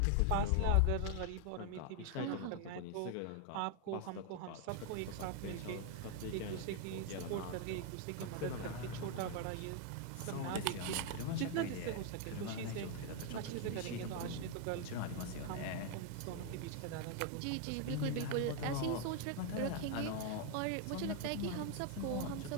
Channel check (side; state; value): both; different; correlation 0.00